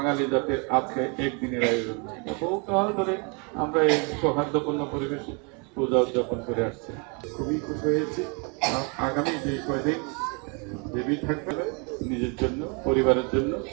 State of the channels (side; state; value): left; quieter; 33.4 dB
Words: জাতির আজকে একদিনের আয়োজন, বহুকাল ধরে আমরা এই সৌহার্দ্যপূর্ণ পরিবেশে পূজা উদযাপন করে আসছি। খুবই খুশি হয়েছি। আগামী যে কয়দিন দেবী থাকবে নিজের জন্য, পরিবারের জন্য